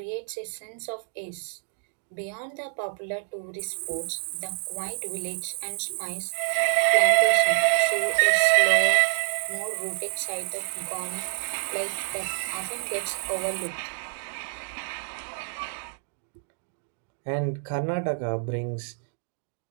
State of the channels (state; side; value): silent; left; digital silence